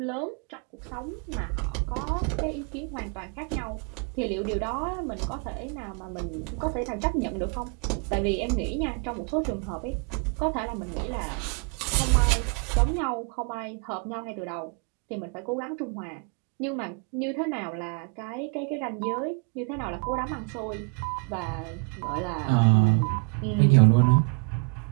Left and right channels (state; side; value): quieter; left; 32.8 dB